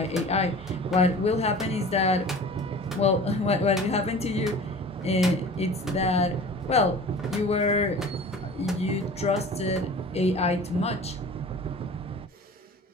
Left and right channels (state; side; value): normal; both; correlation 0.41